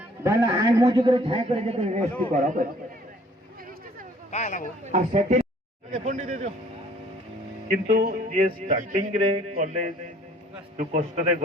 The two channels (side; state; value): both; normal; correlation 0.57